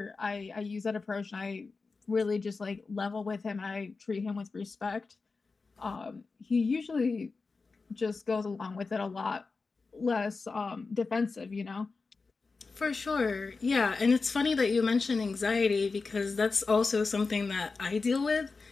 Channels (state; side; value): quieter; right; 4.2 dB